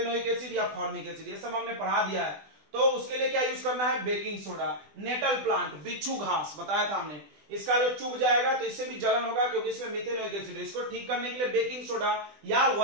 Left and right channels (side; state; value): left; late; 20 ms